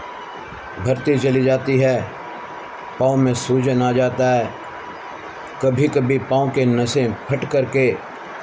भरती चली जाती है, पाँव में सूजन आ जाता है, कभी कभी पाँव के नसें फट करके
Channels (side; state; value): both; identical; correlation 1.00